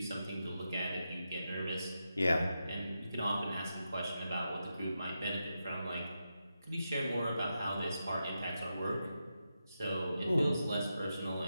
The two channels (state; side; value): inverted; both; correlation -0.88